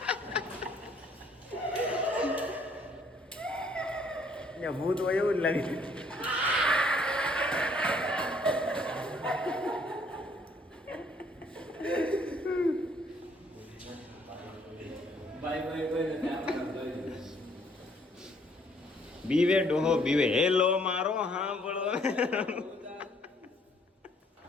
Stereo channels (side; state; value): both; normal; correlation 0.64